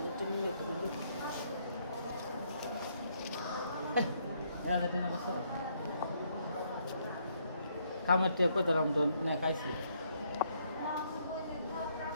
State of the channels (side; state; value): both; inverted; correlation -0.71